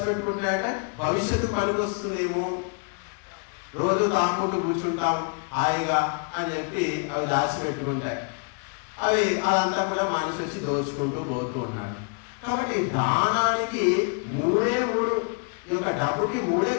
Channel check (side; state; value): right; quieter; 37.9 dB